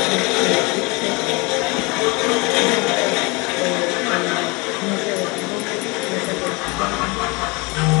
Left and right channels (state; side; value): quieter; right; 27.2 dB